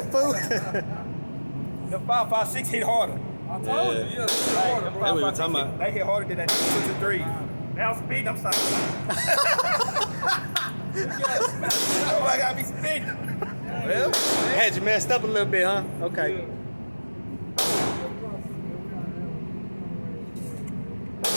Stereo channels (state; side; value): inverted; both; correlation -1.00